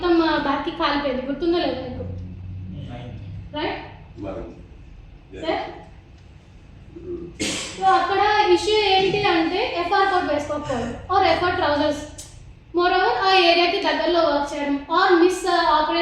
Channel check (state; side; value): identical; both; correlation 1.00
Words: బ్యాక్కి కాలిపోయింది. గుర్తుందో లేదు మీకు? Right sir. సో అక్కడ ఇష్యూ ఏంటి అంటే ఎఫ్ఆర్ కోట్ వేసుకోకపోవడం, or FR trousers, more over ఆ ఏరియాకి దగ్గరలో వర్క్ చేయడం, or miss